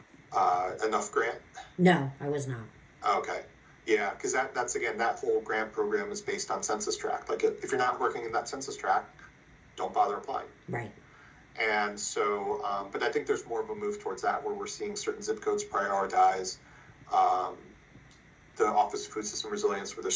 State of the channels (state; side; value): identical; both; correlation 1.00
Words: Enough grant? No, I was not. Okay. Yeah, because that's again, that whole grant program is based on census tract. Like if you're not working in that census tract, don't bother applying. Right. And so, but I think there's more of a move towards that where we're seeing certain zip codes prioritize the Office of Food System Resilience with their